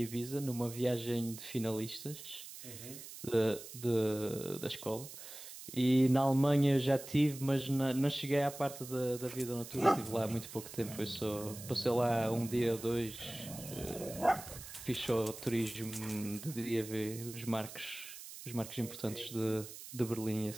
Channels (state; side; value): noise; right; hiss, 13 dB below the sound